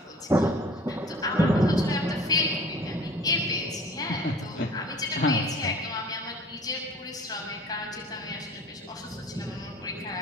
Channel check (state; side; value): normal; both; correlation 0.47